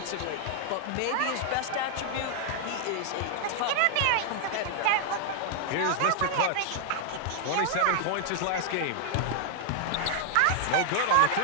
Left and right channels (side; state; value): both; different; correlation 0.00